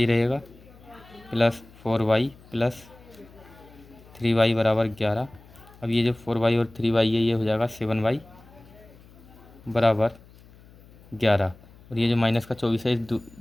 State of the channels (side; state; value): left; noise; hum, 24 dB below the sound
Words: रहेगा प्लस 4y + 3y = 11। अब ये जो 4y और 3y है ये हो जाएगा 7y = 11 और ये जो माइनस का 24 है